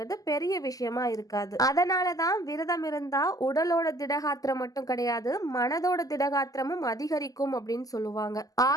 பெரிய விஷயமா இருக்காது. அதனாலதான் விரதம் இருந்தா உடலோட திடகாத்திரம் மட்டும் கிடையாது, மனதோட திடகாத்திரமும் அதிகரிக்கும் அப்படின்னு சொல்லுவாங்க.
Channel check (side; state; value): right; late; 0.17 ms